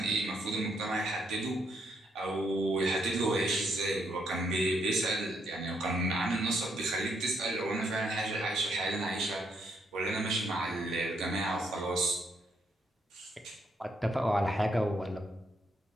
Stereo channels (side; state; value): both; normal; correlation 0.75